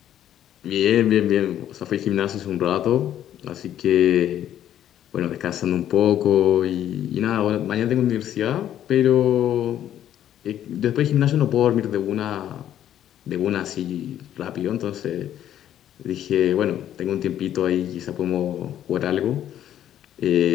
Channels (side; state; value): right; quieter; 11.1 dB